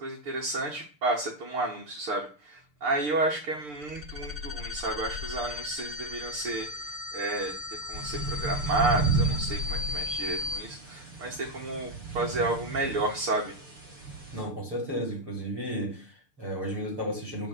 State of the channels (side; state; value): left; late; 6.7 ms